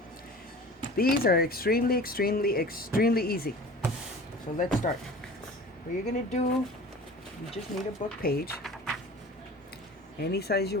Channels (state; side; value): normal; both; correlation 0.40